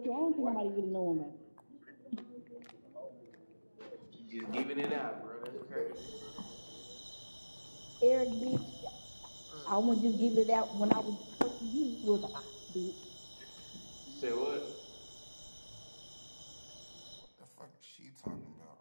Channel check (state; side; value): inverted; both; correlation -1.00